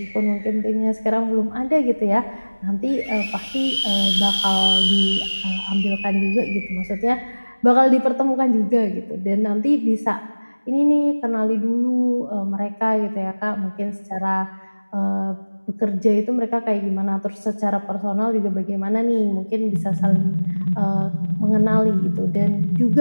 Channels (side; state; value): both; inverted; correlation -1.00